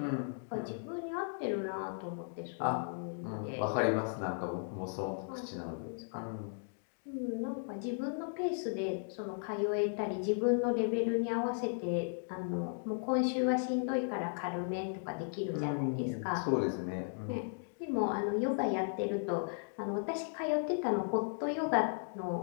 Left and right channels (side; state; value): right; silent; digital silence